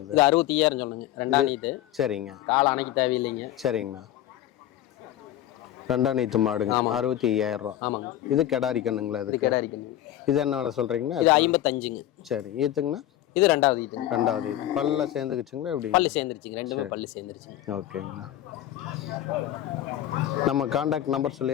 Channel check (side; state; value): right; quieter; 13.0 dB